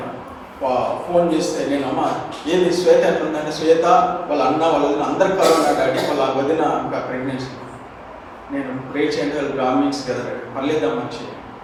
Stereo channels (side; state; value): both; identical; correlation 1.00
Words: ఫోన్ చేస్తే నేను అమ్మ ఏంది శ్వేత ఎట్లుందంటే శ్వేత వాళ్ళ అన్న వాళ్ళ వదిన అందరు కరోనా డాడీ వాళ్ళ వదిన ఇంకా ప్రెగ్నెన్సీ. నేను ప్రే చేయండి వాళ్ళు బ్రాహ్మిన్స్ కదా పర్లేదా మంచి